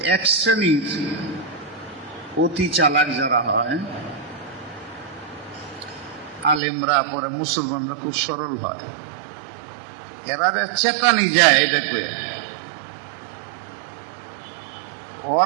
এক শ্রেণীর অতি চালাক যারা হয়, আলেমরা, পরে মুসলমানরা খুব সরল হয়, এরা চেতানি যায় এটা করে।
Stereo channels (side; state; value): left; drops out; at 6.6 s